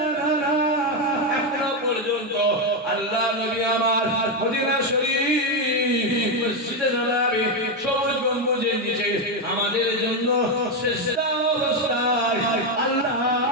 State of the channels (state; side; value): normal; both; correlation 0.06